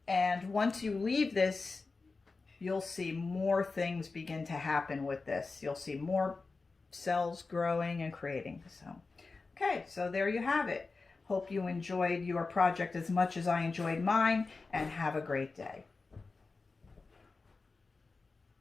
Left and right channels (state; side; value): quieter; right; 4.0 dB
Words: And once you leave this, you'll see more things begin to happen with this. You'll see more cells growing and creating. So, okay, so there you have it. Hope you enjoyed your project as much as I enjoyed mine, and have a great day.